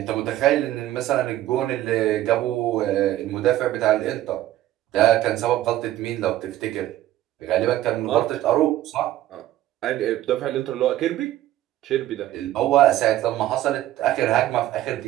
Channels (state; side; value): quieter; left; 14.0 dB